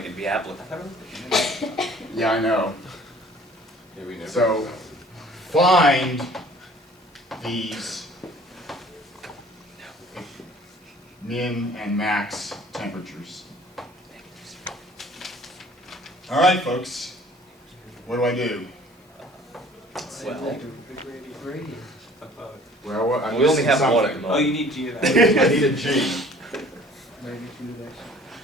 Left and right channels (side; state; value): both; normal; correlation 0.52